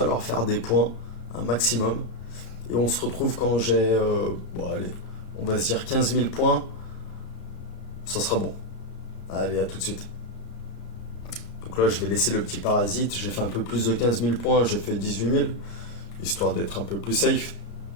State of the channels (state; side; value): late; right; 34 ms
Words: faire des points, un maximum. Et on se retrouve quand j'ai, bon allez, on va se dire 15 000 points, ça sera bon. Allez, à tout de suite. Donc là, je vais laisser le petit parasite. J'ai fait un peu plus de 15 000 points, j'ai fait 18 000, histoire d'être un peu plus safe.